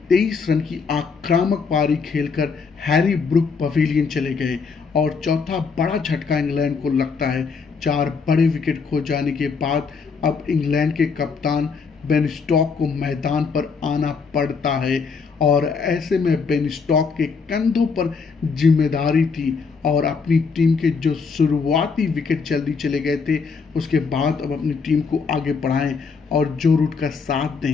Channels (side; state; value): right; quieter; 5.2 dB